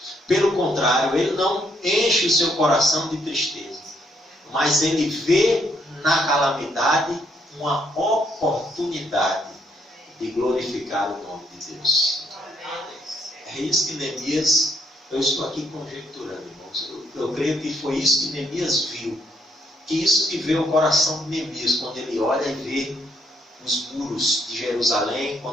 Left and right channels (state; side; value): normal; both; correlation 0.72